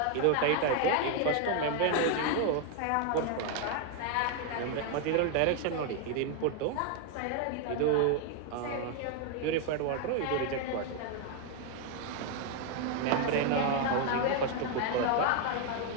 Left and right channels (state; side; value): different; both; correlation 0.01